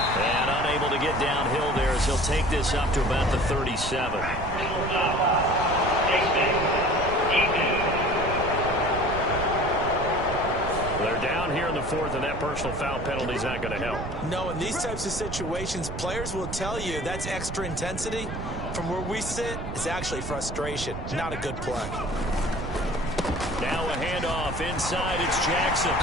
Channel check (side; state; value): right; noise; rumble, 7 dB below the sound